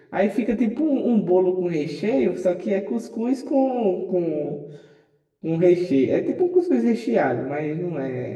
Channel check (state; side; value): identical; both; correlation 1.00